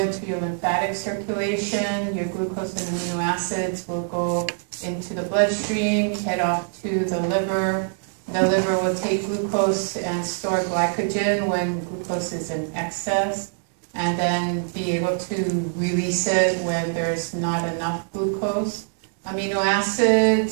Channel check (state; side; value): silent; left; digital silence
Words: your lymphatic circulation, your glucose and amino acids will go into the bloodstream, head off to the liver. The liver will take glucose and store glycogen when glucose is in excess, and then be able to release it when there's not enough glucose. Amino